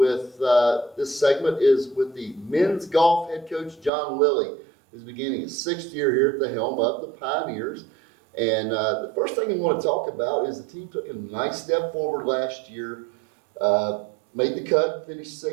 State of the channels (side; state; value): left; drops out; at 3.9 s